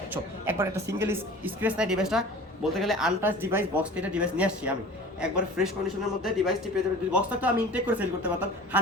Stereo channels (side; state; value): both; normal; correlation 0.42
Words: একবার একটা সিঙ্গেল স্ক্র্যাচ নাই ডিভাইসটা। বলতে গেলে আনটাচ ডিভাইস, বক্স থেকে ডিভাইস নিয়ে আসছি আমি, একবার ফ্রেশ কন্ডিশনের মধ্যে ডিভাইসটি পেয়ে যাবেন। বক্সটা তো আমি ইনটেক করে সেল করতে পারতাম